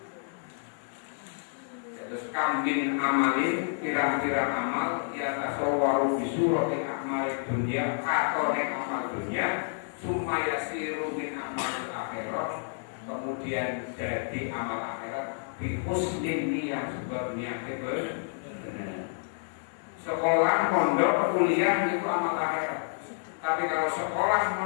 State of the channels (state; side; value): silent; right; 58 dB below the other